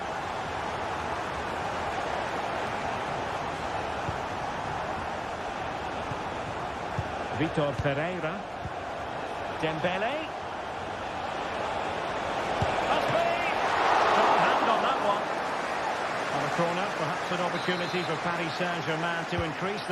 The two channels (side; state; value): both; identical; correlation 1.00